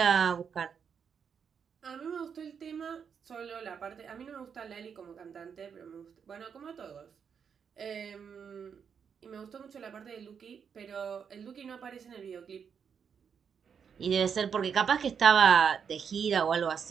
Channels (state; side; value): quieter; left; 7.0 dB